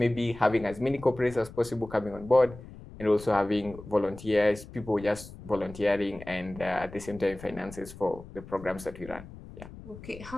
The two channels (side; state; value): left; noise; rumble, 16 dB below the sound